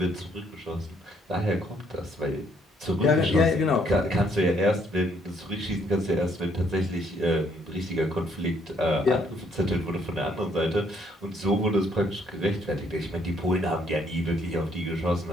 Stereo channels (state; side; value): normal; both; correlation 0.68